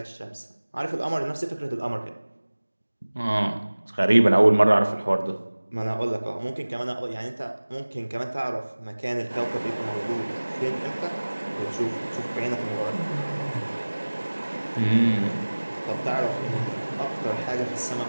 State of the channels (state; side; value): inverted; both; correlation -1.00